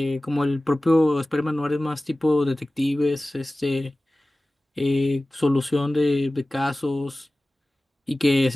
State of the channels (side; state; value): both; normal; correlation 0.97